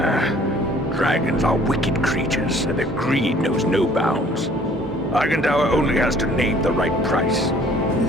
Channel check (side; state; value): both; normal; correlation 0.55